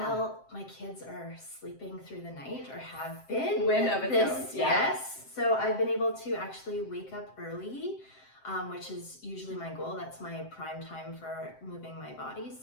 Well, my kids are sleeping through the night, or have been. Win of its own. Yes. So I've been able to actually wake up early, which is usually my goal. That's my prime time for moving my body.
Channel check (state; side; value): late; right; 7.6 ms